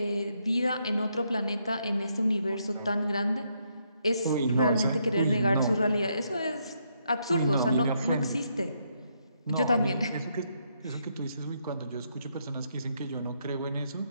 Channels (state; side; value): inverted; both; correlation -0.76